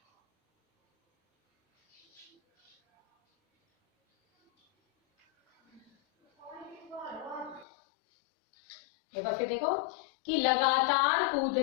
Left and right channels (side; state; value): right; drops out; at 7.7 s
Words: एक बार फिर देखो, कि लगातार